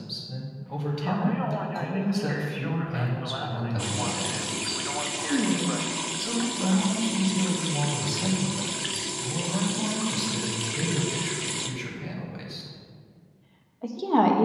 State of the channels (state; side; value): identical; both; correlation 1.00